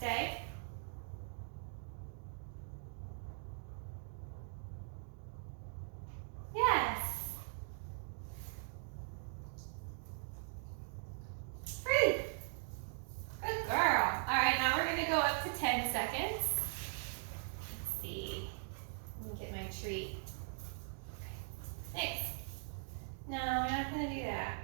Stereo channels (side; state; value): left; silent; digital silence